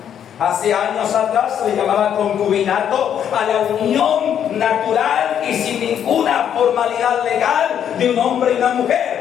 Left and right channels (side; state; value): right; quieter; 9.2 dB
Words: Hace años atrás se le llamaba concubinato a la unión natural y sin ninguna formalidad legal de un hombre y una